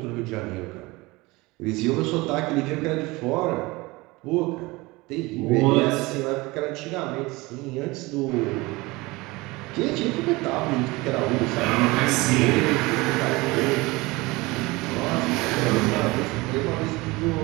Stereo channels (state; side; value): quieter; left; 22.4 dB